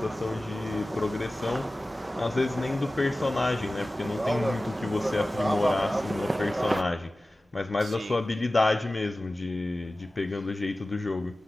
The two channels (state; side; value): normal; both; correlation 0.96